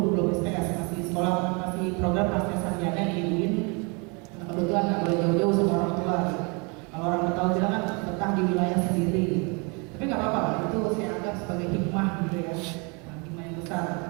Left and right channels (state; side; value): quieter; left; 31.6 dB